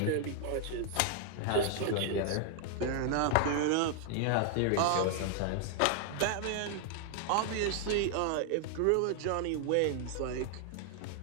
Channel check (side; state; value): both; different; correlation 0.00